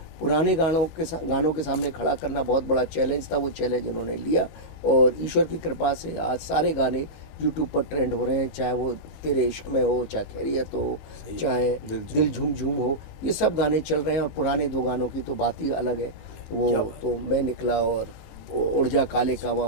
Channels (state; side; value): late; right; 19 ms